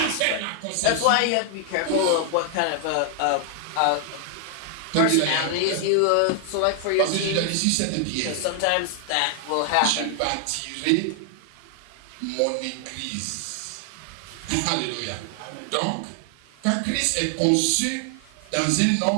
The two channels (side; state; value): both; different; correlation 0.00